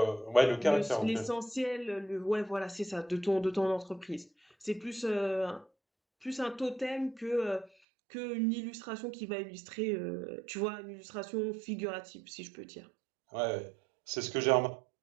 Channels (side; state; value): left; drops out; at 7.7 s